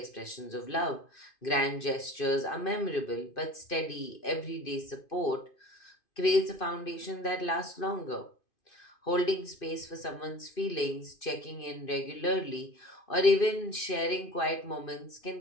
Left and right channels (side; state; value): right; late; 2.5 ms